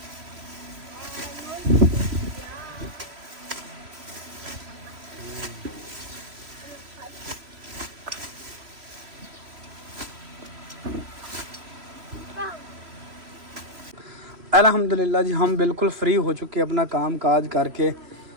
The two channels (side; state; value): left; late; 3.1 ms